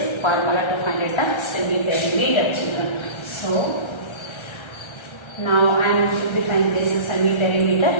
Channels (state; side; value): late; right; 1.3 ms